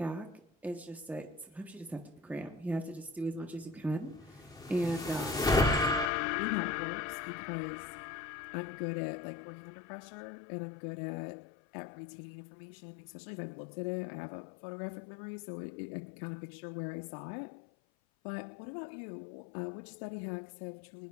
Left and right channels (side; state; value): right; drops out; at 6.1 s